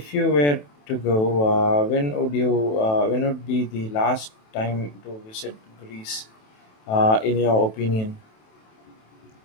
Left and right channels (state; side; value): late; right; 27 ms